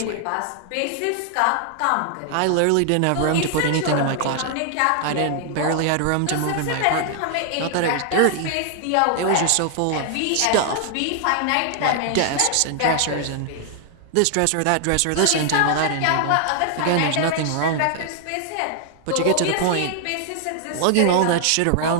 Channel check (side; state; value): both; different; correlation 0.00